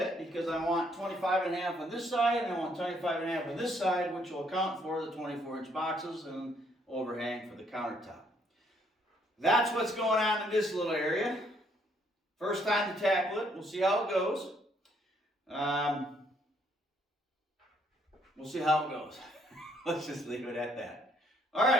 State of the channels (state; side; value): normal; both; correlation 0.68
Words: because I want 25.5 on this side and I want 25.5 on this side, which will account for the 24-inch boxes and overhang for the countertop. That's what's going on in this little area. First time to tackle it. We'll see how it goes. We'll see how it goes. Let's just leave it at that. All